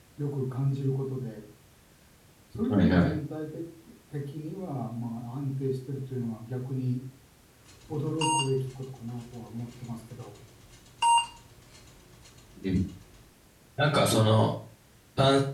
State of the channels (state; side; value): identical; both; correlation 1.00